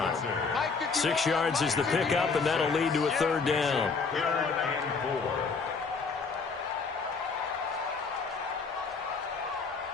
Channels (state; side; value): quieter; right; 4.8 dB